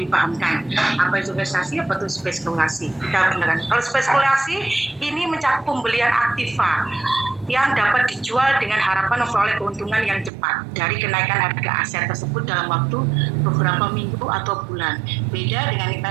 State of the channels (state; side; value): drops out; left; at 10.3 s